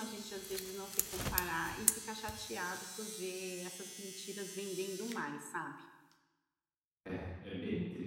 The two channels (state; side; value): identical; both; correlation 1.00